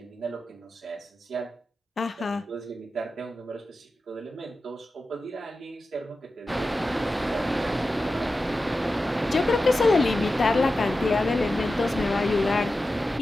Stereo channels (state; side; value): normal; both; correlation 0.93